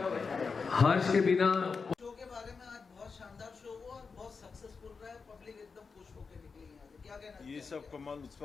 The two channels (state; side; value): quieter; right; 5.0 dB